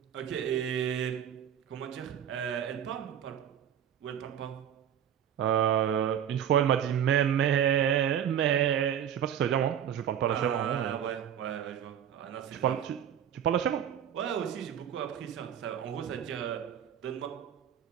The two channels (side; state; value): left; quieter; 9.3 dB